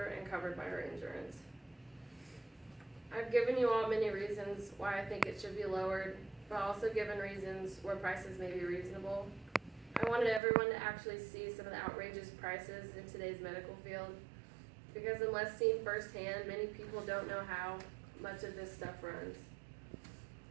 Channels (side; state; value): left; drops out; at 10.4 s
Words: and covered by her insurance. I've given you all many reasons why I think it should be lowered, but also given reasons where prices may be reasonable. I wanted everyone to actually see some of the outrageous prices in today's medical field, because unless seen firsthand, many people don't know how much of this stuff runs.